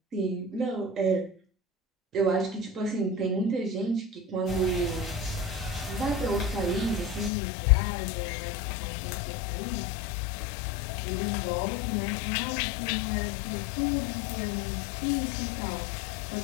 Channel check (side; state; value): right; drops out; at 7.3 s